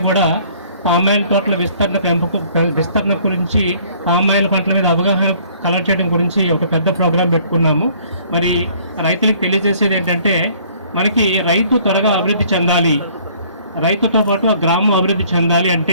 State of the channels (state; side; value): inverted; both; correlation -0.57